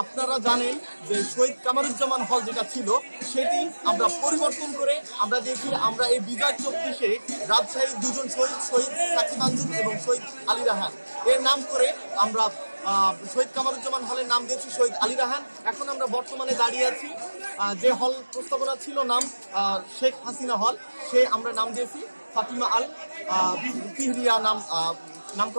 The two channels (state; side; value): inverted; both; correlation -1.00